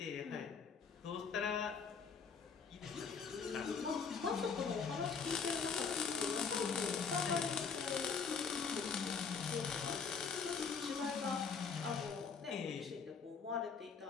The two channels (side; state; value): right; quieter; 5.8 dB